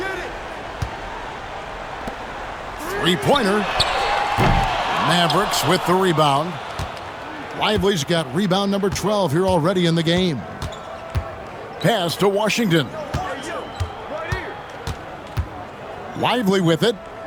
Three-pointer. Mavericks with the rebound. Lively's got rebound number 12 here already in the game. Pass to Washington. Lively with it.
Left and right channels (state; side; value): identical; both; correlation 1.00